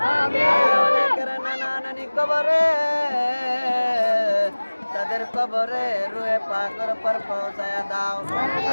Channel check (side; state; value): both; inverted; correlation -1.00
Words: নানা নানি কবরে তাদের কবরে রুয়ে পাকর পর পৌঁছায়া দাও।